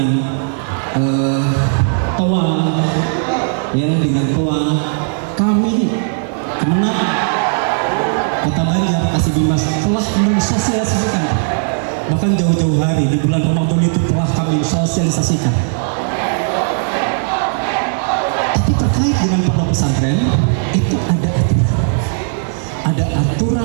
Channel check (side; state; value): left; silent; digital silence